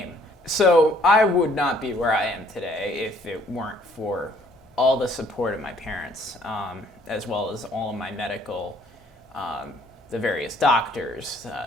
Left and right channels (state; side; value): normal; both; correlation 0.62